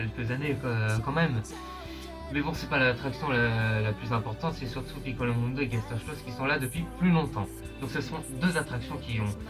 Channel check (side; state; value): both; identical; correlation 1.00